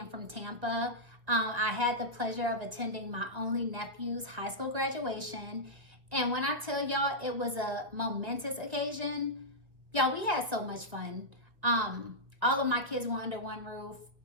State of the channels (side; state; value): left; late; 1.7 ms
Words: from Tampa. I had the pleasure of attending my only nephew's high school graduation. And when I tell y'all it was a momentous occasion, y'all, we had so much fun. All of my kids were under one roof.